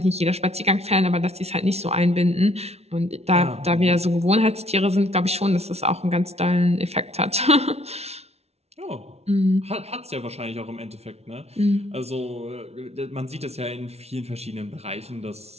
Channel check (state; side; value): late; left; 0.31 ms